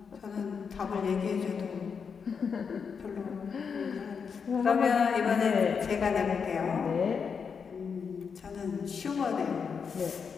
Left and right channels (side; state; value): right; quieter; 6.1 dB